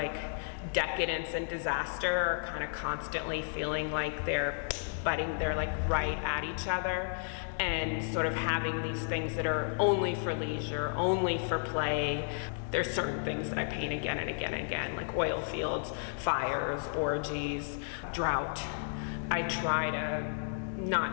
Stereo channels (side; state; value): right; silent; 56 dB below the other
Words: decadence and disaster are kind of constantly feeling like they're like right at each other, and sort of having these things that are only for leisure, only for play. There's certain things that I paint again and again and again, like oil fields, fires, orgies, drought. I try to